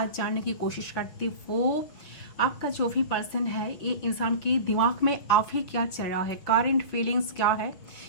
जानने की कोशिश करती हूँ आपका जो भी पर्सन है, ये इंसान के दिमाग में अभी क्या चल रहा है, करंट फीलिंग्स क्या है,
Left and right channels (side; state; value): right; late; 5.8 ms